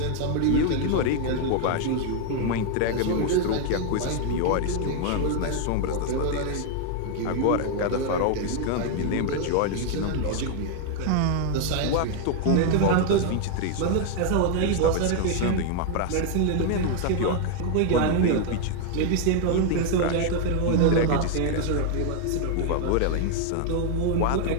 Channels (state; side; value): different; both; correlation 0.00